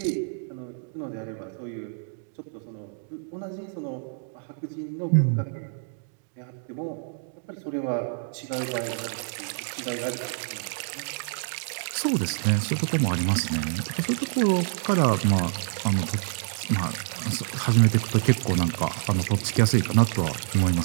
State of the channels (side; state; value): left; silent; digital silence